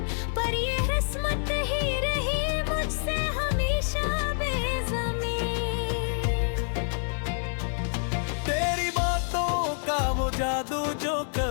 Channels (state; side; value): silent; right; 60 dB below the other